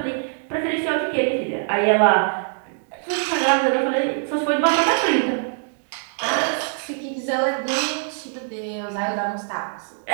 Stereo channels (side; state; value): left; silent; digital silence